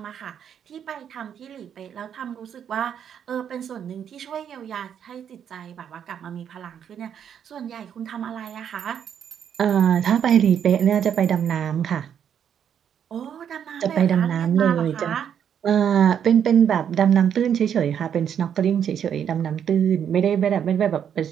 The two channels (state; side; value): quieter; left; 8.6 dB